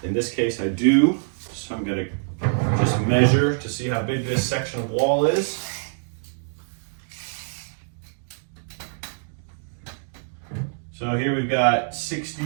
In this case, I do. So I'm gonna just measure to see how big this section of wall is. So here we've got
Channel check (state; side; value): silent; left; digital silence